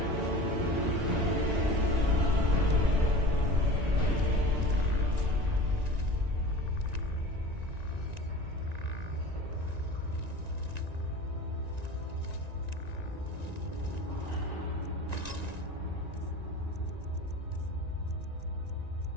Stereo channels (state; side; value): late; left; 1.9 ms